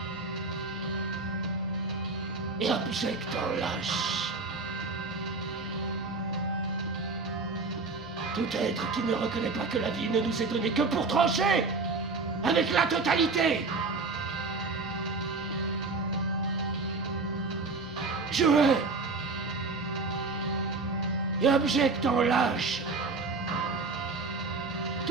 et abjecte en lâche tout être qui ne reconnaît pas que la vie ne nous est donnée que pour trancher avec la totalité. Je hais et abjecte en lâche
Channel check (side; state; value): left; quieter; 3.9 dB